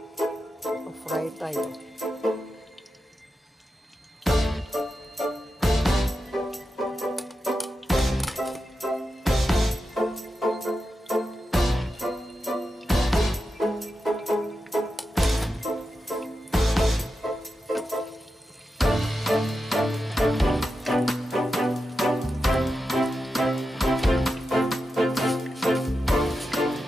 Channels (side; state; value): both; normal; correlation 0.89